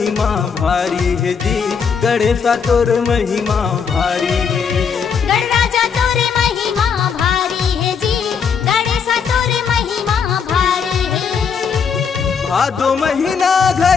भारी है जी, गणेशा तोर महिमा भारी है। गणराजा तोर महिमा भारी है जी, गणेशा तोर महिमा भारी है। भादो महीना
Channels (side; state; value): right; quieter; 6.4 dB